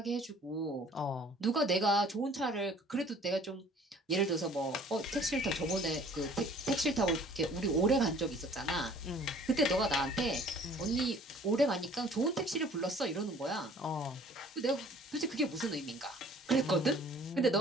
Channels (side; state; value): both; normal; correlation 0.53